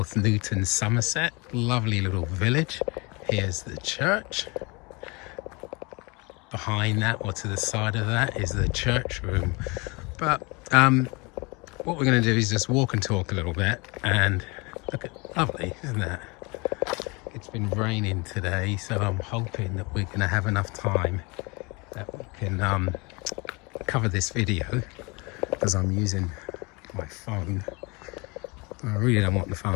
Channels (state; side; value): quieter; right; 27.5 dB